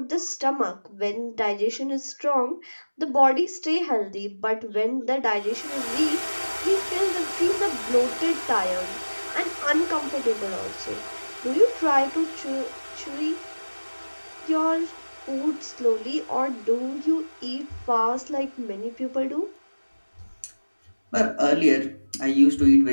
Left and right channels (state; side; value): inverted; both; correlation -1.00